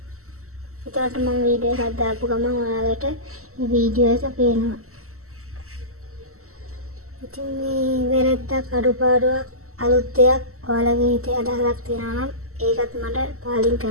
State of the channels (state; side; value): late; left; 0.63 ms